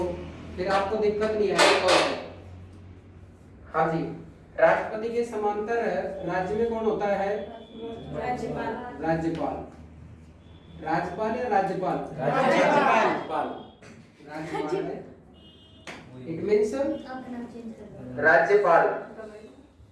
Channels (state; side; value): identical; both; correlation 1.00